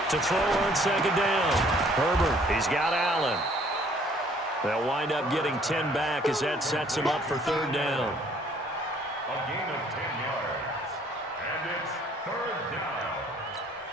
To throw on second down. Herbert, he's got Allen. They'll wind up getting 10 back as that sets him up for third down. A gain of 10 yards. And it's third down.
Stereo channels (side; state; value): both; normal; correlation 0.60